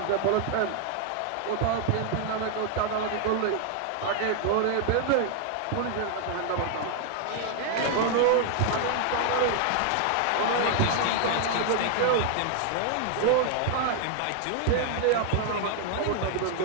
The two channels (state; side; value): different; both; correlation 0.00